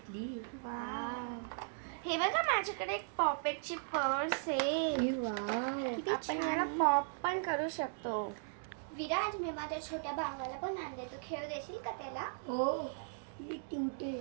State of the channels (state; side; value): silent; left; digital silence